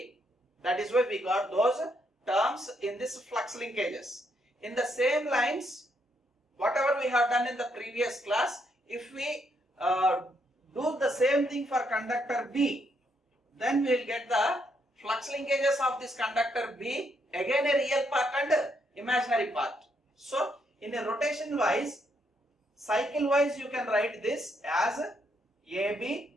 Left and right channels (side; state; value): both; normal; correlation 0.75